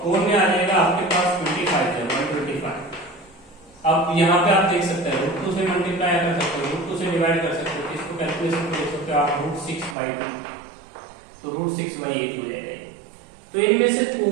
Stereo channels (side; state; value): left; drops out; at 10.0 s